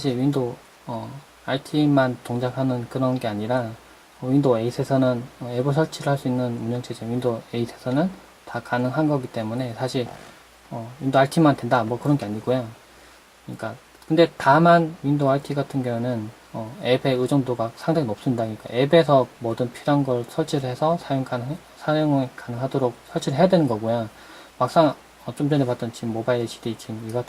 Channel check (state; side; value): identical; both; correlation 1.00